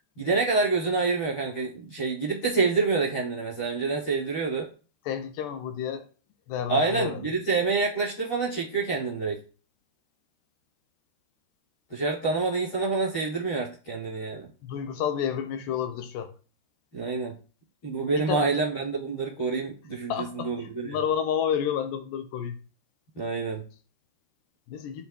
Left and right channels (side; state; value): right; late; 13 ms